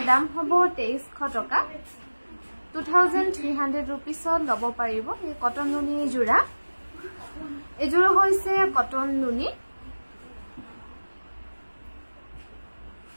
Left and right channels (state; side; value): inverted; both; correlation -1.00